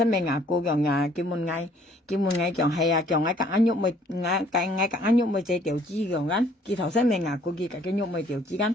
咪牙膏用佢門嗌用係用喺格肉咪格肉咪就調之用緊，佢頭先咪牙膏佢格嘅肉咪調之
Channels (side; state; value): both; normal; correlation 0.60